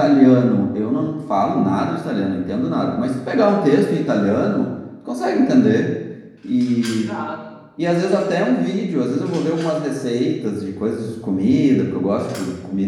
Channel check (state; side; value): identical; both; correlation 1.00